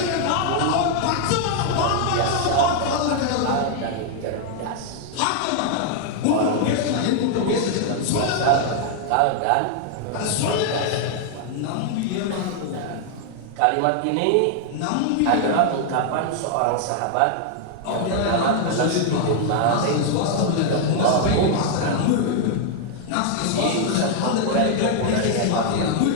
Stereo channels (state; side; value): different; both; correlation 0.00